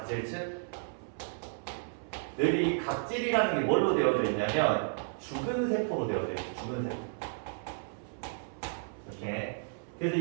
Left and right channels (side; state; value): left; silent; 56 dB below the other